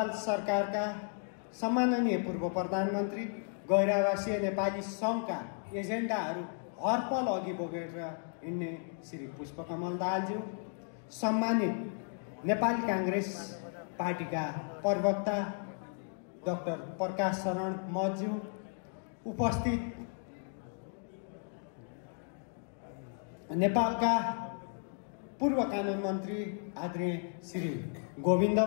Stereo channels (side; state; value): right; silent; 55 dB below the other